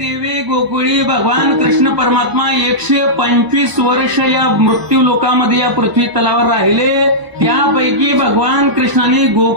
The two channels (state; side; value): late; left; 1.0 ms